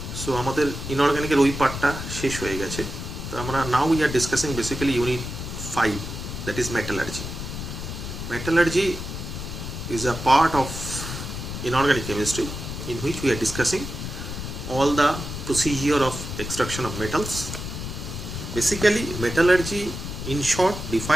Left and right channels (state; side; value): noise; left; rumble, 7 dB below the sound